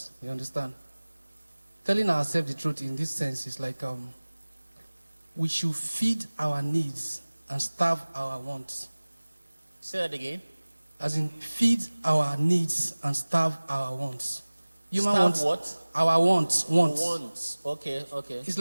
You understand? Telling ourselves the truth in this sense is like we should feed our needs and starve our wants. Say that again. As in, feed our needs and starve our wants. Human Starve wants, what? our wants. Wants. Okay. It's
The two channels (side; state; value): both; inverted; correlation -1.00